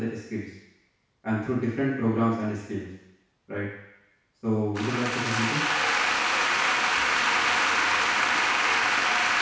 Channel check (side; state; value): both; identical; correlation 1.00